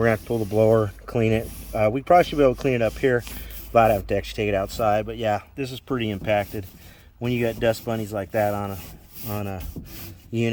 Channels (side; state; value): both; identical; correlation 1.00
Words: to have to pull the blower, clean it. We probably should be able to clean it up here. I'd have to actually take it outside, but yeah, this is pretty impacted when you got dust bunnies like that on a